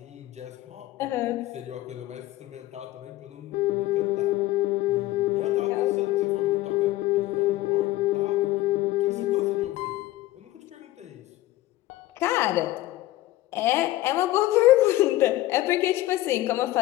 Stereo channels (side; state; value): right; quieter; 16.4 dB